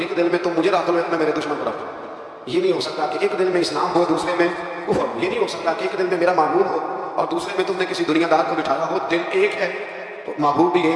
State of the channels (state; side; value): identical; both; correlation 1.00